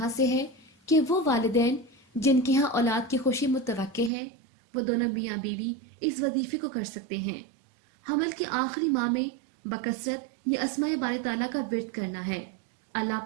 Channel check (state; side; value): drops out; left; at 4.1 s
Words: से है कि वो वालिदैन जिनके यहाँ औलाद की खुशी मुतवक्के है, वो दोनों मियाँ बीवी इस वजीफे को कर सकते हैं। हमल के आखिरी माह में बकसरत ये अस्माए बारी ताला का विर्द करना है। अल्लाह